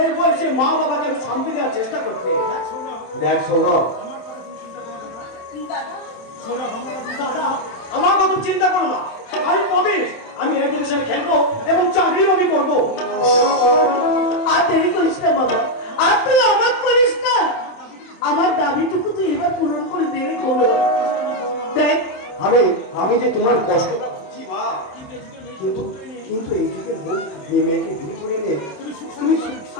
বয়সে মা বাবাকে একটু শান্তি দেওয়ার চেষ্টা করতে। দেখ সৌরভ, দাদা, আমার কথা চিন্তা করো না, আমি প্রবেশ, আমি এডুকেশনে খেলবো এবং চাকরিও আমি করবো। আর দেরি করিস না বাবা, আর তুই আমার করিস না। আমার দাবিটুকু তুই এবার পূরণ করে দেবে করো। দেখ, আমি আমি যে তোমার কষ্টটা বুঝছি মা, কিন্তু কিন্তু এই যুগের বউ মেয়েকে বিয়ে করে এনে তুমি সুখ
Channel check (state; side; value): late; right; 27 ms